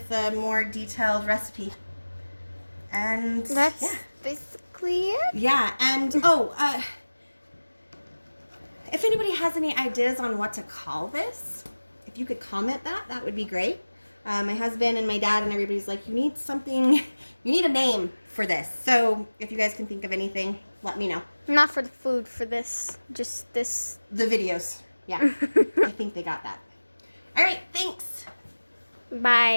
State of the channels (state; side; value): inverted; both; correlation -1.00